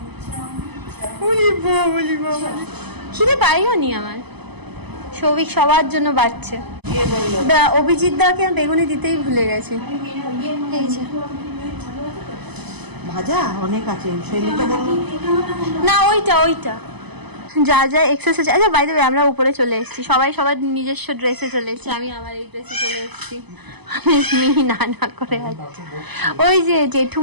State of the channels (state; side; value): late; left; 0.99 ms